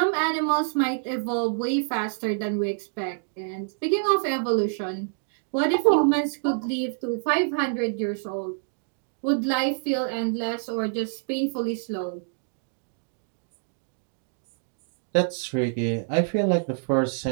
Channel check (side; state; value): left; silent; digital silence